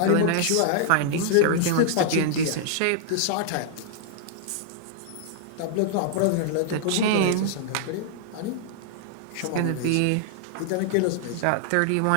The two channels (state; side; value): different; both; correlation -0.01